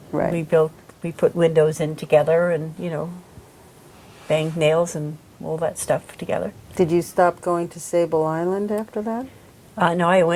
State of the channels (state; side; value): identical; both; correlation 1.00